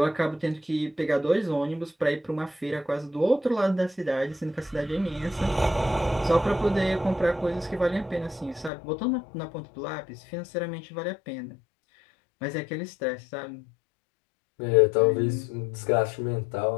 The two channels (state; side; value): drops out; right; at 8.7 s